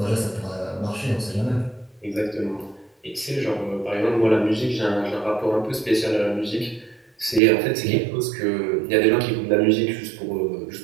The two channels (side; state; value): left; drops out; at 7.4 s